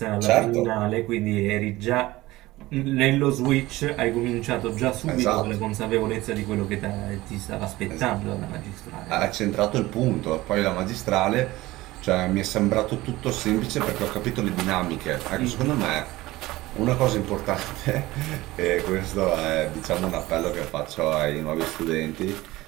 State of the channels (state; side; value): quieter; left; 18.5 dB